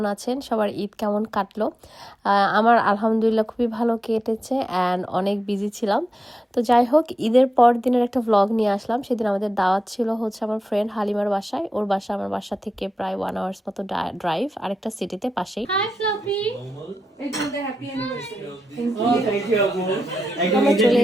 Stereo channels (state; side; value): normal; both; correlation 0.90